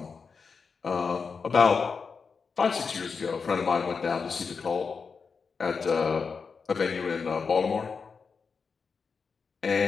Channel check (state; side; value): quieter; right; 5.3 dB